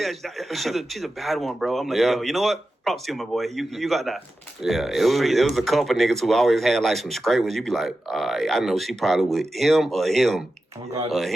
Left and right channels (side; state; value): both; normal; correlation 0.92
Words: she's a bad one, bro. I'm like, yo, you know what? Props to you, my boy. You got that. Yeah, it was a couple niggas who always had like some straight ones. You be like, I know she probably with him or him. Oh, God. Or